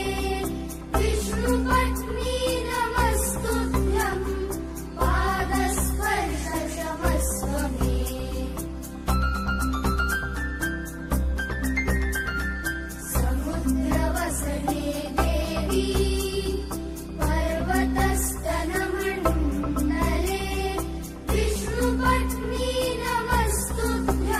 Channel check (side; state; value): both; identical; correlation 1.00